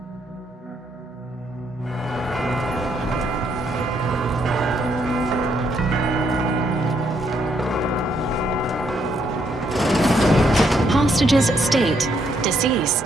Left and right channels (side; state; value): both; normal; correlation 0.73